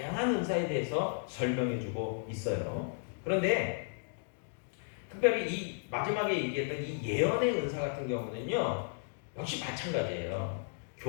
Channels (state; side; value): silent; right; digital silence